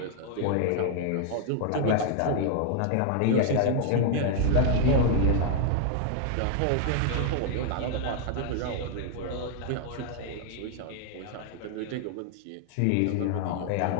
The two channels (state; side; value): different; both; correlation 0.00